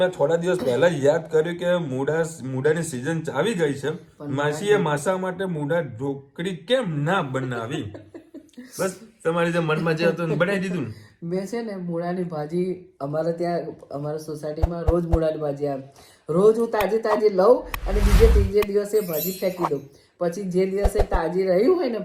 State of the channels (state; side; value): identical; both; correlation 1.00